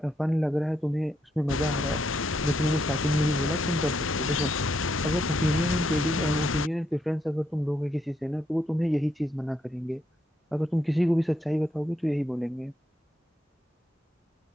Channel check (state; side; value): normal; both; correlation 0.78